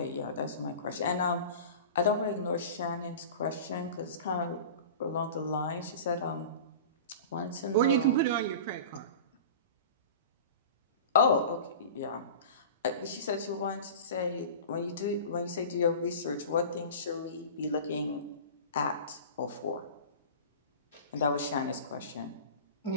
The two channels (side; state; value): both; inverted; correlation -0.35